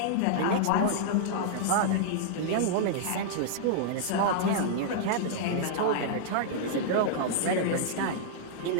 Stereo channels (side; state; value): both; different; correlation -0.01